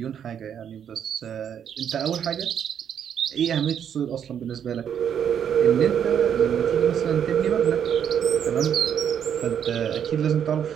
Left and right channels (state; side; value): quieter; left; 8.6 dB